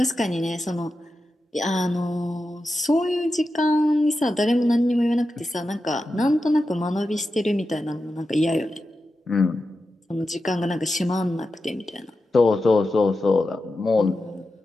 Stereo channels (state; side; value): normal; both; correlation 0.91